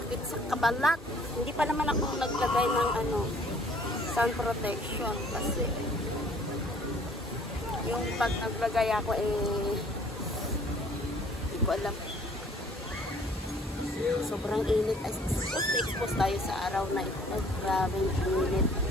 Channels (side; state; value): both; normal; correlation 0.57